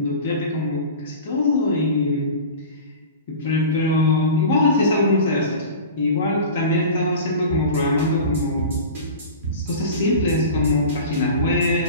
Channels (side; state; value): both; inverted; correlation -0.34